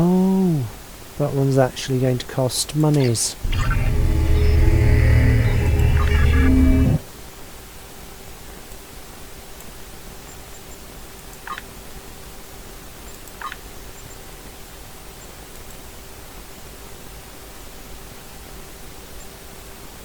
that one's actually going to cost monies.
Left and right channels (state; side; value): identical; both; correlation 1.00